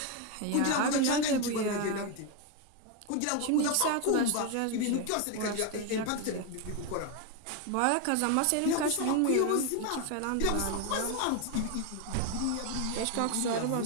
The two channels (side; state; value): both; different; correlation 0.01